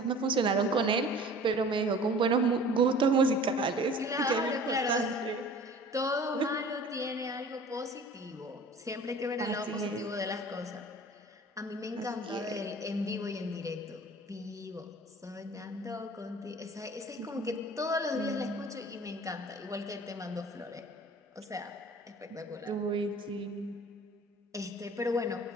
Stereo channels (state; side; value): normal; both; correlation 0.45